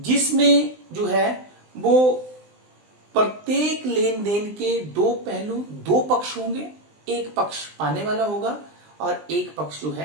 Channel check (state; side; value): late; left; 20 ms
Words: जो है वो प्रत्येक लेन then के दो पहलू, दो पक्ष होंगे, एक पक्ष पाने वाला होगा और एक पक्ष जो